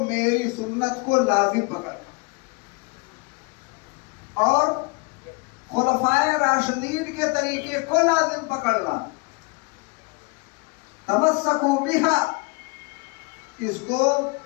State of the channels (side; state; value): right; quieter; 29.1 dB